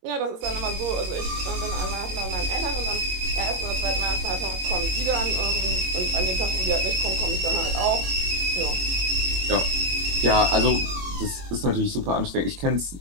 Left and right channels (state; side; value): late; left; 22 ms